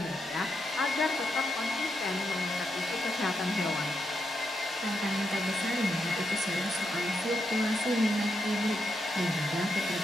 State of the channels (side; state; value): both; normal; correlation 0.82